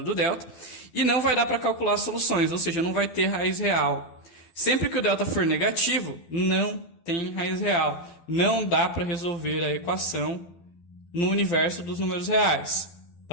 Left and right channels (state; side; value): late; right; 12 ms